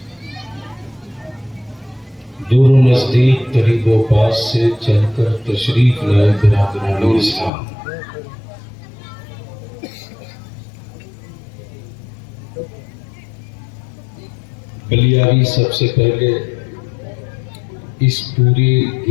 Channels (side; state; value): right; drops out; at 7.5 s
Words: दूर नज़दीक करीब व पास से चलकर तशरीफ लाए बिरादरान इस्लाम, बलियारी सबसे पहले इस पूरे